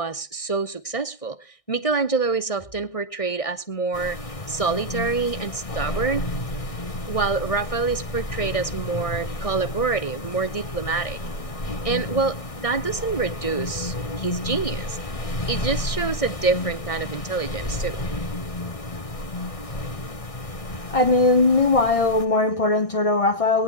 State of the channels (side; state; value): right; late; 1.6 ms